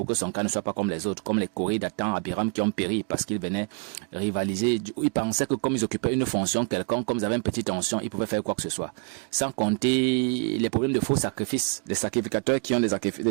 que son cas ne soit pas comme les autres, comme les Corées d'Athan, Abiram qui ont péri parce qu'ils venaient rivaliser. Ils pensaient que comme ils occupaient une fonction quelconque, comme ils avaient une petite tension, ils pouvaient faire quoi que ce soit. Sans compter les problèmes de faux sacrifices, les sacrificateurs qui ont des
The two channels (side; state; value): left; quieter; 36.8 dB